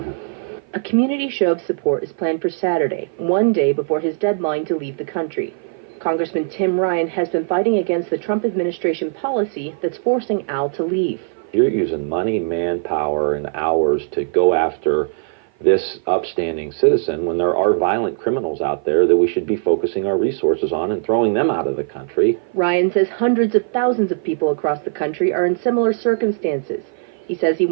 him. A community show of support is planned for Saturday, one day before his deadline to leave the country. Congressman Tim Ryan has been fighting against the Trump administration policy that's forcing Al to leave. You're using money, manpower, and hours to go after this upstanding citizen when there are violent criminals out there that we should be focusing our resources on and throwing them out of the country. Ryan says hundreds of thousands of people across the country are in similar circumstances. He says he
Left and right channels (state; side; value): silent; left; 55 dB below the other